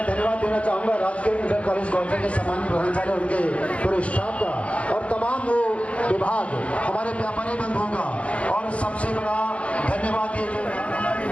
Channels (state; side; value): late; right; 0.063 ms